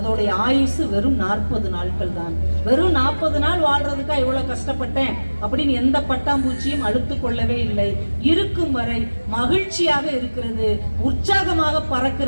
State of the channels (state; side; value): inverted; both; correlation -1.00